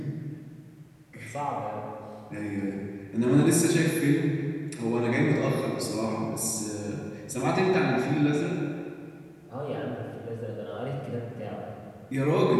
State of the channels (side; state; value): both; identical; correlation 1.00